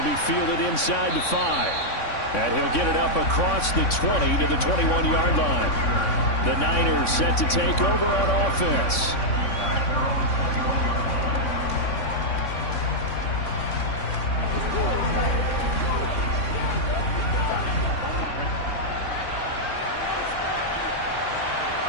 be fielded inside the 5. And he'll get it up across the 20 to the 21-yard line. The Niners set to take over on offense.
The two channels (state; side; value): late; right; 3.6 ms